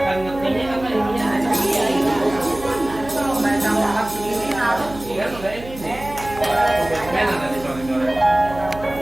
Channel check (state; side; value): noise; right; hum, 15 dB below the sound